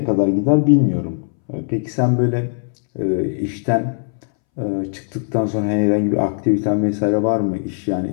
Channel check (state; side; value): silent; right; 64 dB below the other